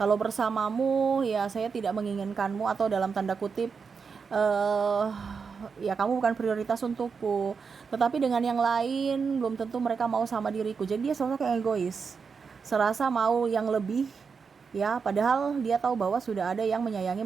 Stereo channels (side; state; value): left; quieter; 5.6 dB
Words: bersamamu ya saya tidak menginginkanmu atau dalam tanda kutip ya kamu bukan prioritas untukku, tetapi dengan yang lain belum tentu mereka mau sama diriku. Jadi dia sosok yang egois, serasa mau yang lebih ya, padahal dia tahu bahwa sudah ada yang menyayangi,